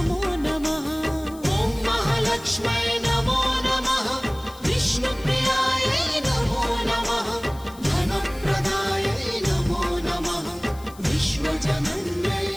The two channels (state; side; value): noise; left; hiss, 22 dB below the sound